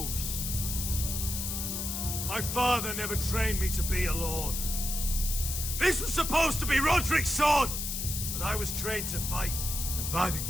My father never trained me to be a lord. This was supposed to be Roderick's sword, but I was trained to fight. And by the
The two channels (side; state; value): left; noise; hiss, 3 dB below the sound